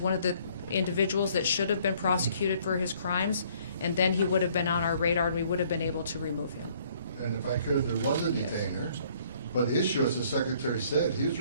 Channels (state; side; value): inverted; both; correlation -0.62